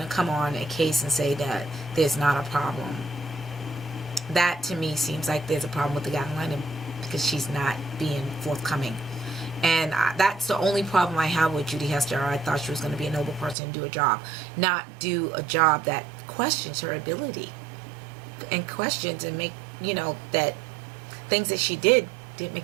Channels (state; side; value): drops out; left; at 13.6 s